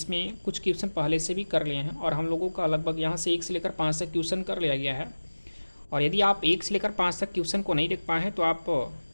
कुछ क्वेश्चन पहले से भी कर लिए हैं और हम लोगों का लगभग यहाँ से 1 से लेकर 5 तक क्वेश्चन कर लिया गया है। और यदि आप 1 से लेकर 5 तक क्वेश्चन को नहीं देख पाए हैं तो आप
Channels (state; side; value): inverted; both; correlation -1.00